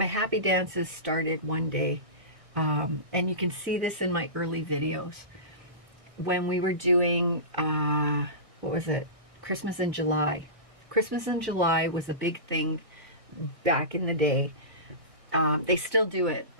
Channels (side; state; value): left; late; 1.6 ms